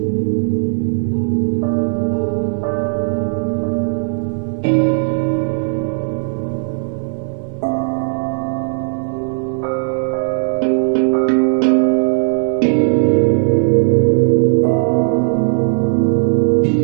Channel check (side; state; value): left; silent; 68 dB below the other